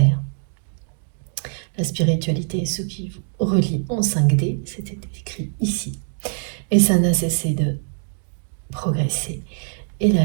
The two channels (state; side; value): silent; left; 64 dB below the other